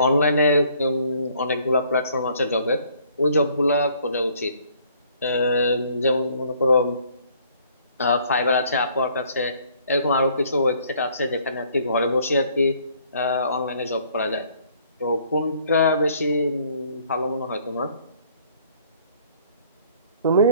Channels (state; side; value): inverted; both; correlation -0.61